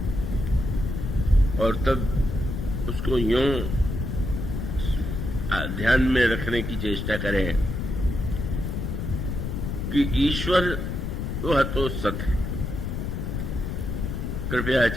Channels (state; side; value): noise; left; rumble, 3 dB below the sound